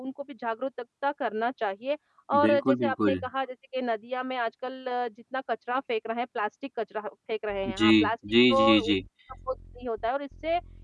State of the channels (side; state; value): both; identical; correlation 1.00